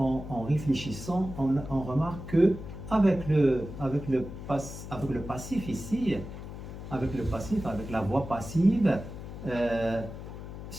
réfléchissant, on remarque que avec le passif ici, avec la voix passive,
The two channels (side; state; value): left; noise; hum, 10 dB below the sound